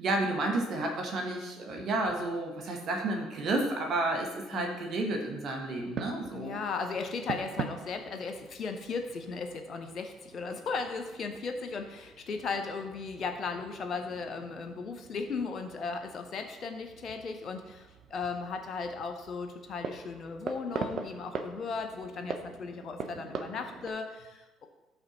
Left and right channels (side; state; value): both; normal; correlation 0.61